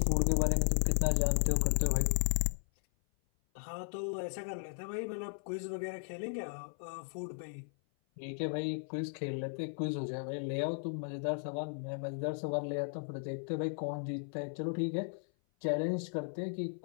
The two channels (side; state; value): right; silent; 54 dB below the other